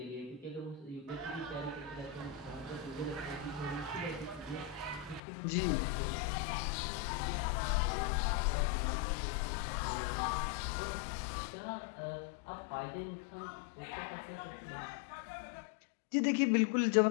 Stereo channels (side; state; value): right; drops out; at 5.2 s